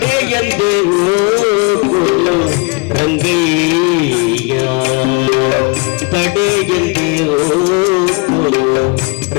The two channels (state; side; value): quieter; right; 30.6 dB